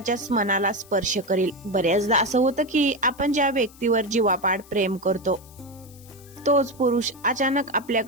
मनाला स्पर्श करेल. बऱ्याचदा असं होतं की आपण ज्या व्यक्तीवर जीवापाड प्रेम करतो तोच पुरुष अचानक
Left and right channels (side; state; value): left; noise; hiss, 24 dB below the sound